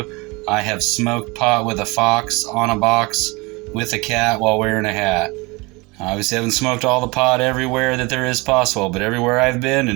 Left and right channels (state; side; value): quieter; left; 25.7 dB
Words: I have smoked pot with a fox on a box with a cat while wearing a hat. I obviously haven't smoked all the pot everywhere that there is possible, but everywhere I've been